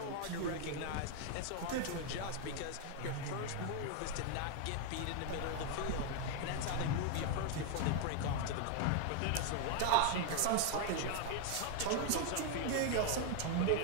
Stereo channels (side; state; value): both; different; correlation 0.00